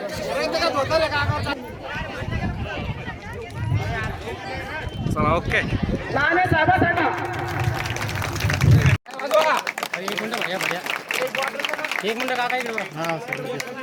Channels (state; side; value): identical; both; correlation 1.00